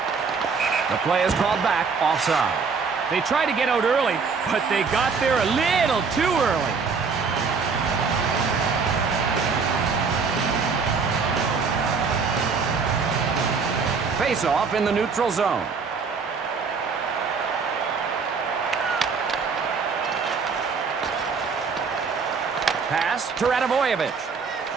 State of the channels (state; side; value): quieter; left; 5.2 dB